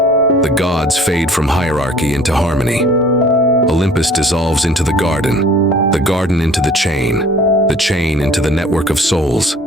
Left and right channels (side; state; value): both; normal; correlation 0.51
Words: gods fade from hierarchy into harmony. Olympus dissolves into the garden into the chain into the network of souls.